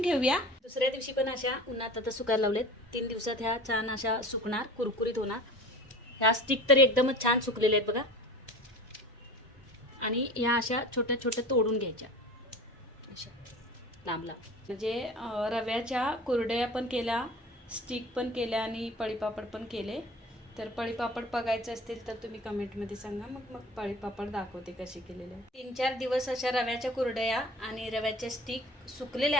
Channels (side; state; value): both; normal; correlation 0.39